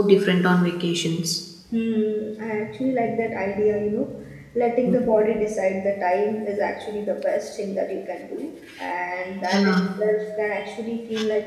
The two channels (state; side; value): identical; both; correlation 1.00